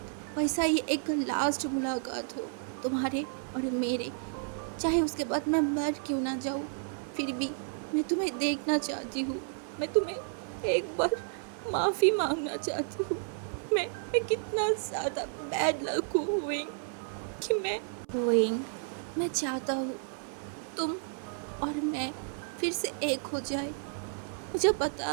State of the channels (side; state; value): left; silent; 57 dB below the other